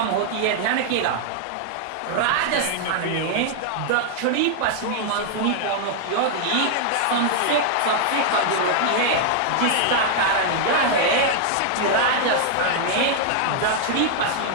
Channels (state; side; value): different; both; correlation 0.00